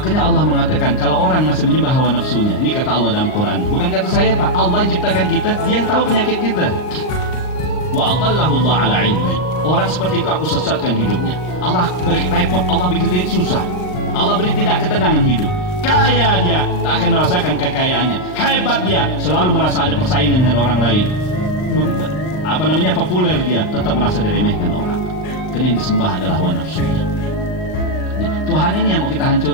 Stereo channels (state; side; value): late; right; 39 ms